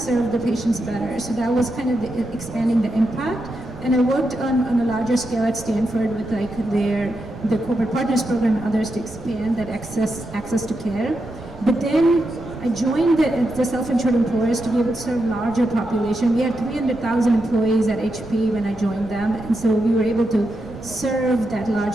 the patients better. So that was kind of expanding the impact. And I worked on a larger scale at Stanford with the corporate partners program and others to expand that access to care. But then I joined the self-insured employers to be able to serve larger population. We had 300,000 employees at HP when I joined them, and so we were able to serve that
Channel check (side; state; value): right; noise; rumble, 20 dB below the sound